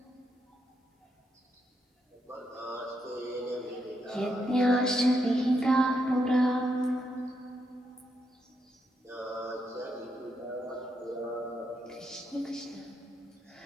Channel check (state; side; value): normal; both; correlation 0.80